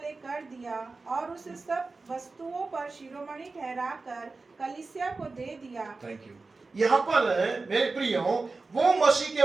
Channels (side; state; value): left; quieter; 3.8 dB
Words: कर दिया, और उसे सब वस्तुओं पर शिरोमणि ठहराकर कलीसिया को दे दिया। Thank you. यहाँ पर मेरे प्रियो वो मसीह